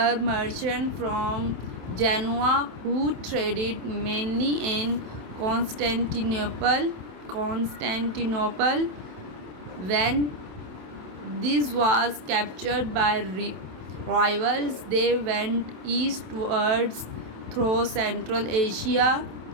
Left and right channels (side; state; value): left; late; 27 ms